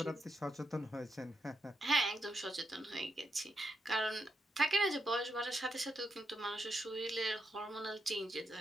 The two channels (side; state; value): both; normal; correlation 0.81